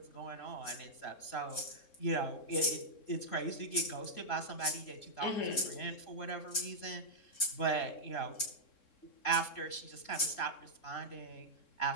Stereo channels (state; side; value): late; right; 3.7 ms